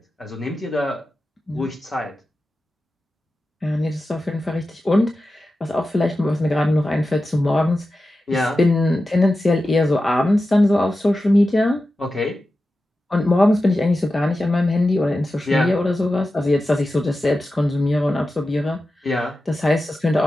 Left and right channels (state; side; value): normal; both; correlation 0.93